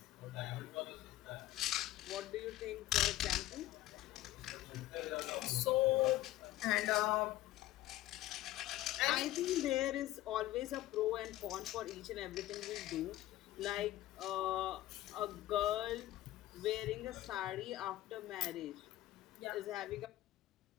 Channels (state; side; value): quieter; right; 15.4 dB